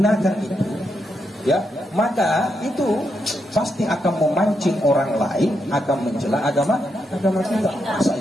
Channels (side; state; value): both; normal; correlation 0.81